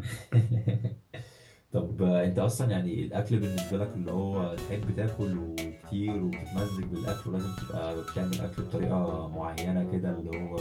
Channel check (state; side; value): identical; both; correlation 1.00